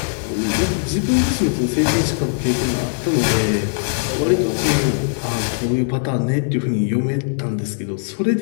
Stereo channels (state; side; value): silent; right; digital silence